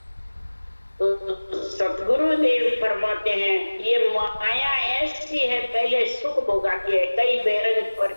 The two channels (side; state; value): both; inverted; correlation -1.00